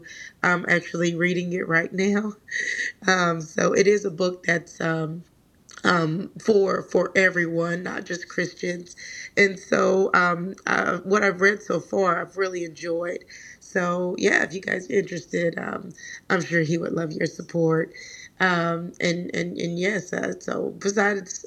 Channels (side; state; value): both; identical; correlation 1.00